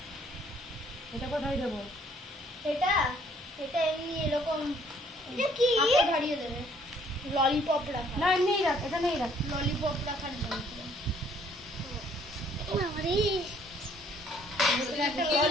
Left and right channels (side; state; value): both; normal; correlation 0.62